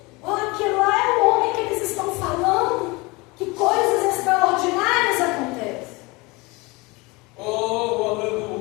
Ó, que lá é o homem que eles estão falando. Que coisas extraordinárias acontecem. Oh,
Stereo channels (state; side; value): quieter; right; 24.7 dB